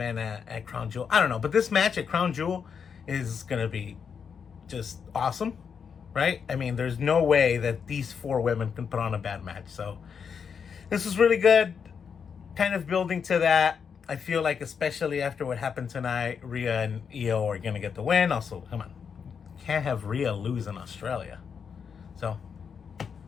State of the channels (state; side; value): quieter; right; 6.6 dB